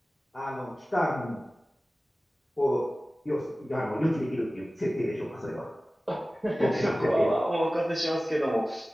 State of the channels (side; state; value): both; normal; correlation 0.97